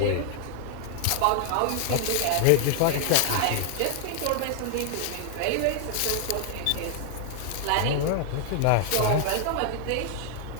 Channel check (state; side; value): different; both; correlation 0.00